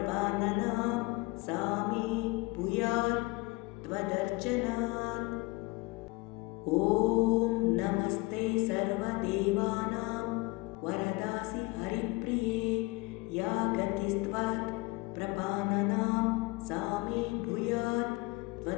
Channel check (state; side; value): quieter; right; 23.5 dB